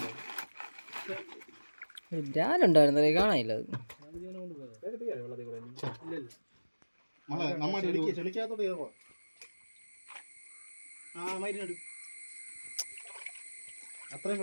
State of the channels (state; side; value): inverted; both; correlation -1.00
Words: ബ്രാലുണ്ടായിരുന്നേ കാണാനില്ല അത് ചെളിക്കാത്തോട്ട് കയറുവാ അത്രയും